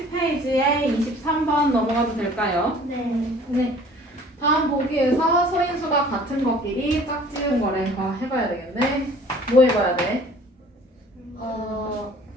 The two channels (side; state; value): both; normal; correlation 0.51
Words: 23번 넘어가도 될까요? 네. 네. 다음 보기에서 소인수가 같은 것끼리 짝지은 거래. 해봐야 되겠네. 뭐 해봐야 돼?